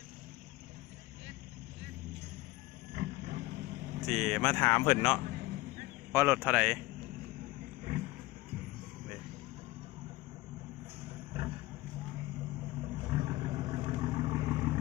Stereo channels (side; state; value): right; quieter; 19.4 dB